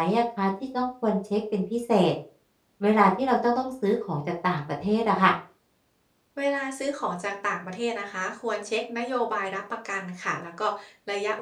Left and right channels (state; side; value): identical; both; correlation 1.00